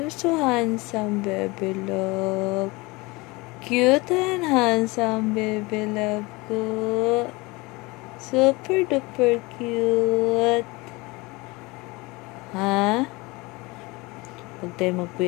You're so handsome, baby love. Cute and handsome, baby love ko. Super duper cute. Ha? Huwag tayo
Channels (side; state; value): right; quieter; 23.9 dB